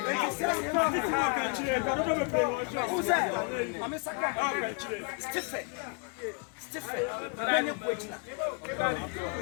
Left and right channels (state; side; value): quieter; right; 35.2 dB